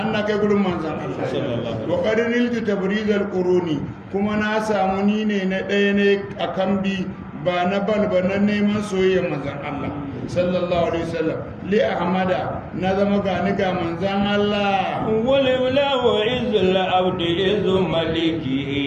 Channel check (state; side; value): identical; both; correlation 1.00